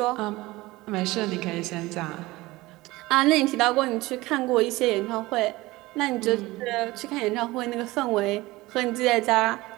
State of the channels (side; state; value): left; quieter; 19.8 dB